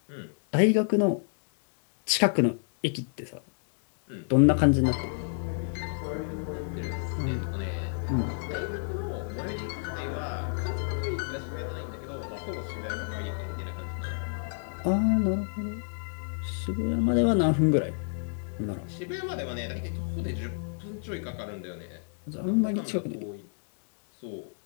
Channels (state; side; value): silent; right; digital silence